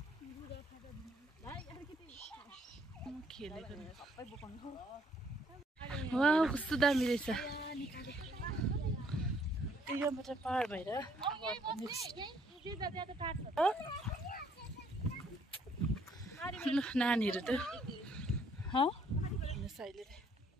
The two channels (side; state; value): both; normal; correlation 0.65